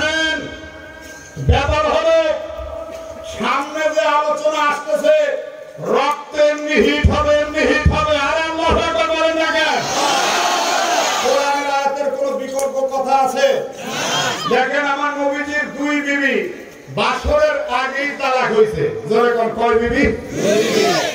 ব্যাপার হলো সামনে যে আলোচনা আসতেছে রক্ত এমনি হিট হবে, এমনি হিট হবে। আর আল্লাহু আকবার বলেন না কেন? কোরআনের আয়াতের কোনো বিকল্প কথা আছে? দেখেন আমার নবীজির 2 বিবি বাসরের আগেই তালাক হয়েছে। জোরে কোন কয় বিবি?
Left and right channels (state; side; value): identical; both; correlation 1.00